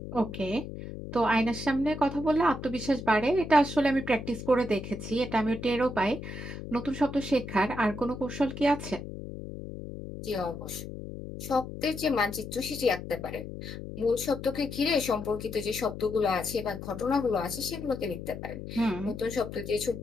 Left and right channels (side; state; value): left; noise; hum, 9 dB below the sound